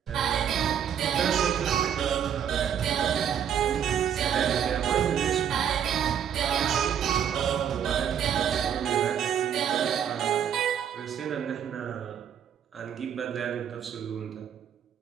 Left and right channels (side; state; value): left; quieter; 8.9 dB